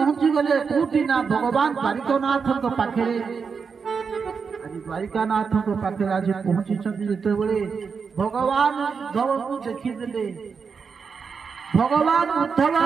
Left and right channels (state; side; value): quieter; left; 5.7 dB